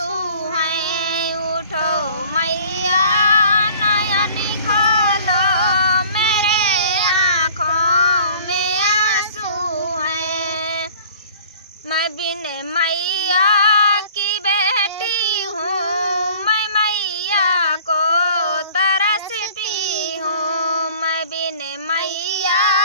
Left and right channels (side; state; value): both; inverted; correlation -0.49